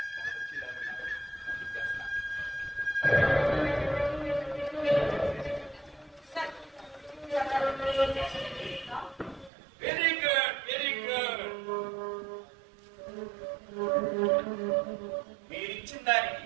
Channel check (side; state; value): left; drops out; at 9.5 s